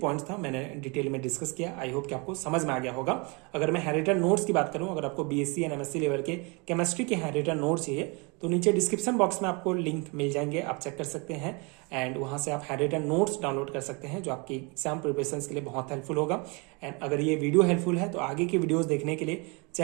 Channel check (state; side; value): quieter; left; 30.3 dB